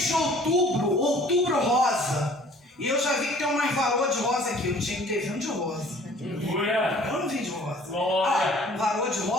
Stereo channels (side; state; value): both; normal; correlation 0.53